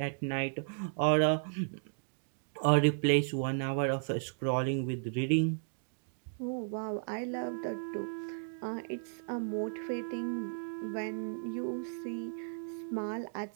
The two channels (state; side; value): silent; left; digital silence